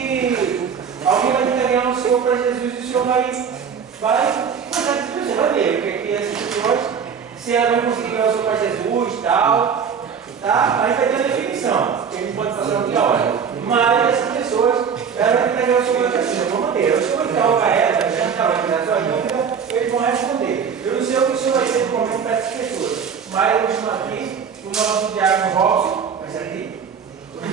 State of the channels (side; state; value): left; quieter; 6.8 dB